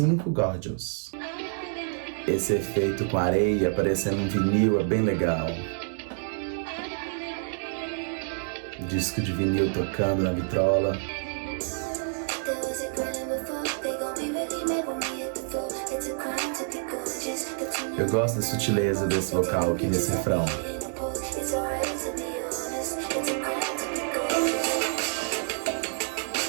Gorgeous. Esse efeito com areia aparecendo um vinil é bem legal. Disco de vinil tocando na vitrola. Eu gosto da sutileza desse vocal aqui nesse refrão.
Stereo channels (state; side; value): silent; left; digital silence